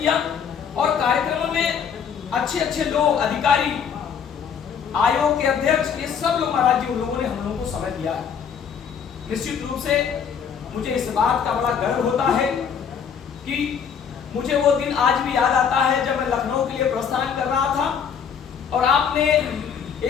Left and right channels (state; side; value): quieter; right; 7.2 dB